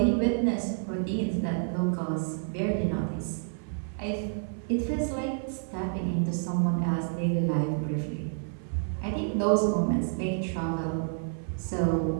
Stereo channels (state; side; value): silent; left; 58 dB below the other